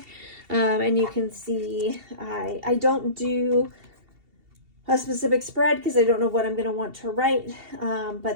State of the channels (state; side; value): late; left; 2.7 ms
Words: and you can see I don't do a specific spread because I don't know what I'm going to want to write,